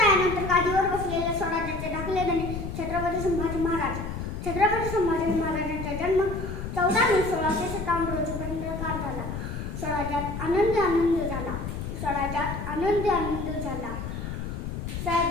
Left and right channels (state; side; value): noise; left; rumble, 6 dB below the sound